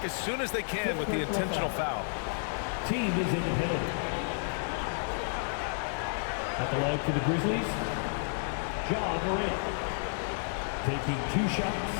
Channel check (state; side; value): silent; right; digital silence